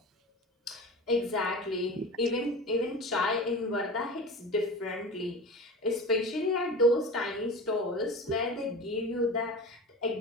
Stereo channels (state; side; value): normal; both; correlation 0.32